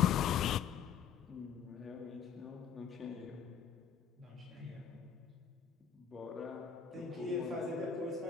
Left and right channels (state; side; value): quieter; right; 7.5 dB